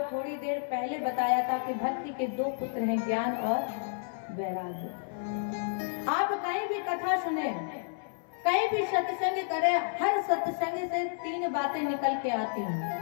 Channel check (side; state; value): right; silent; 57 dB below the other